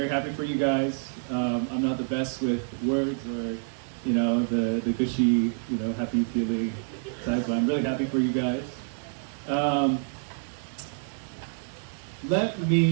happy for you guys. I'm not the best with words or, the gushy, happy feeling type, but I'm really happy for you guys. Let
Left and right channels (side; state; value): left; silent; digital silence